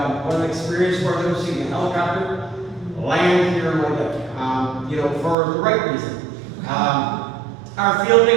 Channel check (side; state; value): left; drops out; at 5.4 s